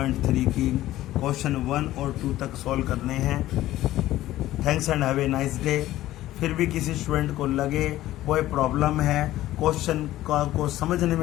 की क्वेश्चन 1 और 2 तक सॉल्व करने हैं। Thanks and have a nice day. फिर भी किसी स्टूडेंट को लगे कोई प्रॉब्लम है, क्वेश्चन को समझने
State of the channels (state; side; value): quieter; right; 14.9 dB